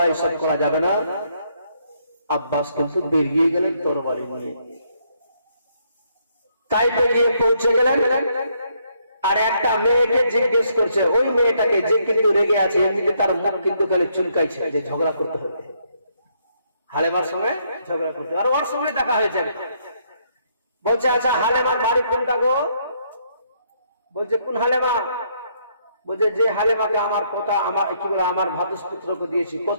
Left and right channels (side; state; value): both; inverted; correlation -0.72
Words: এসব করা যাবে না। আব্বাস কিন্তু বেরিয়ে গেলেন তরবারি নিয়ে। তাই বেরিয়ে পৌঁছে গেলেন, আর একটা মেয়েকে জিজ্ঞেস করছে, ওই মেয়েটাকে, যে কিন্তু রেগে আছে, এমনিতে তার মুখ কিন্তু খালি চুলকাইছে যে ঝগড়া করতে হবে, হালেমার সঙ্গে ঝগড়া করতে। আর ওর সঙ্গে দেখা হয়েছে। বলছে আচ্ছা হালেমার বাড়ি কোনটা গো? বলছে কোন হালেমা? বলছে যে হালেমাকে আমার পোতা, আমার কি বলে, আমার ভাতুষ পুত্রকে দিয়েছি।